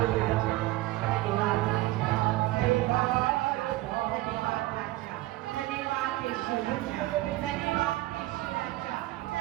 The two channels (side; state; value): left; quieter; 18.0 dB